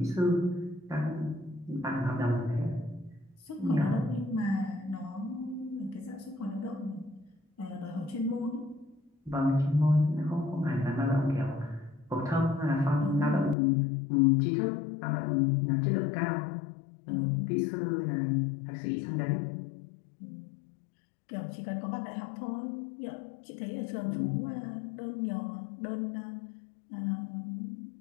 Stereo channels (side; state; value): right; drops out; at 13.6 s